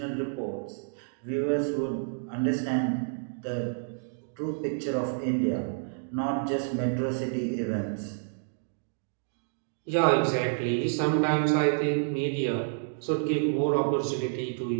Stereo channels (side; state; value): left; silent; digital silence